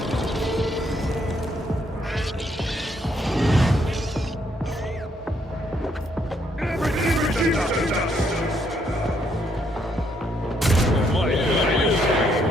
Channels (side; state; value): both; normal; correlation 0.72